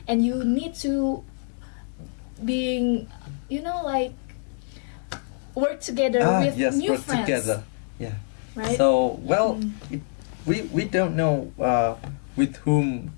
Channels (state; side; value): silent; right; digital silence